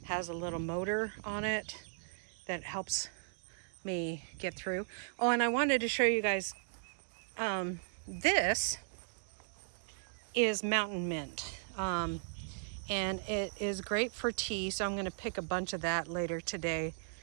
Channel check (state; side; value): silent; left; digital silence